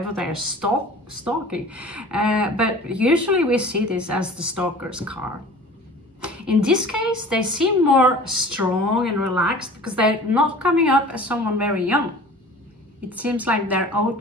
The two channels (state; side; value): normal; both; correlation 0.43